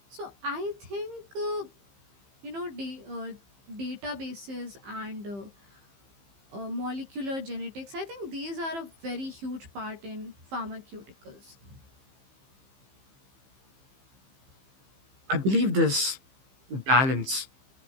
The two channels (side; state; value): left; late; 15 ms